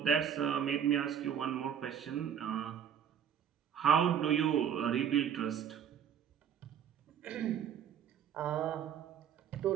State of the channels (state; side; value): quieter; left; 8.7 dB